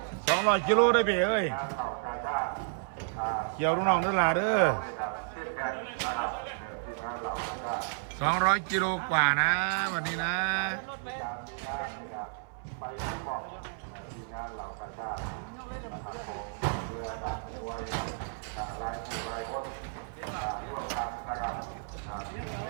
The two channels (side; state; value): left; silent; 57 dB below the other